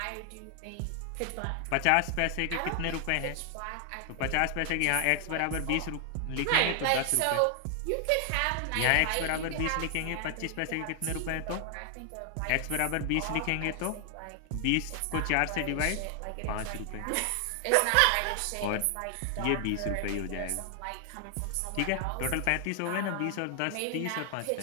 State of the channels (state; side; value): different; both; correlation 0.00